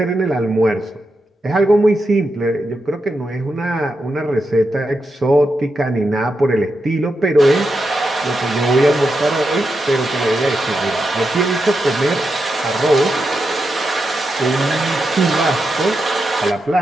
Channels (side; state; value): both; normal; correlation 0.86